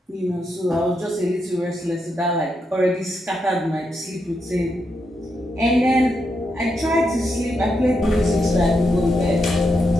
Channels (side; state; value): both; normal; correlation 0.83